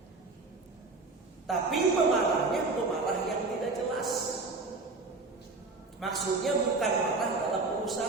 Tapi pemarahnya pemarah yang tidak jelas. Maksudnya bukan marah dalam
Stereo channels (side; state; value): left; quieter; 3.7 dB